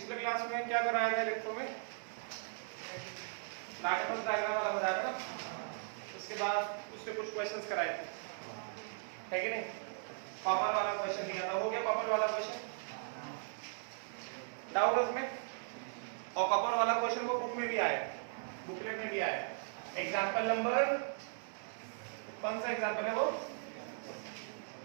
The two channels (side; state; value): left; silent; 52 dB below the other